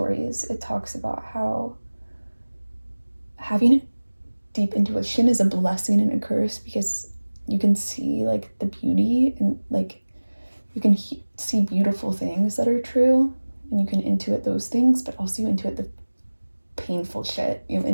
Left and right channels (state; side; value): inverted; both; correlation -1.00